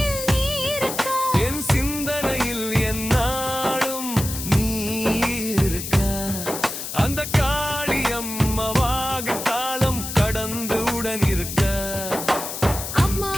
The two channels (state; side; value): noise; left; hiss, 7 dB below the sound